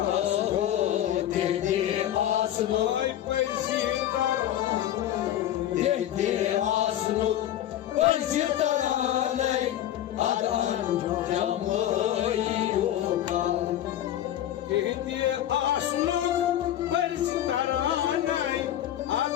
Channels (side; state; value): right; quieter; 12.0 dB